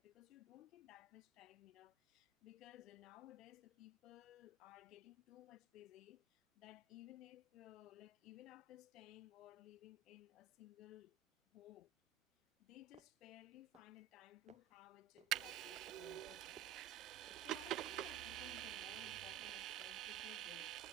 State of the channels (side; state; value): left; quieter; 7.6 dB